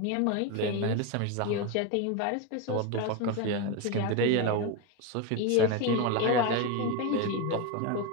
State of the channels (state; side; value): different; both; correlation 0.03